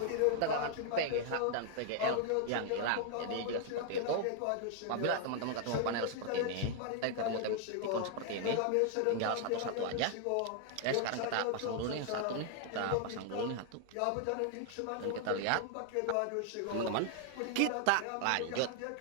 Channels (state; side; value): different; both; correlation 0.00